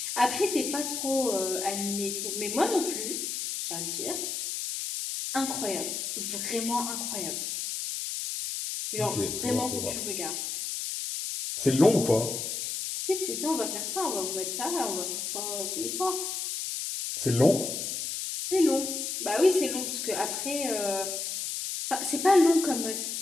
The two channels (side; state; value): left; noise; hiss, 3 dB below the sound